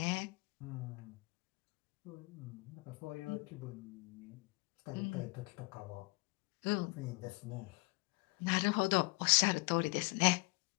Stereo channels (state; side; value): quieter; right; 27.3 dB